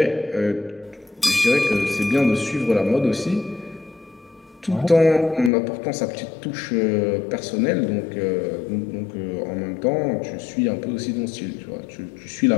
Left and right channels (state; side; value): drops out; right; at 5.5 s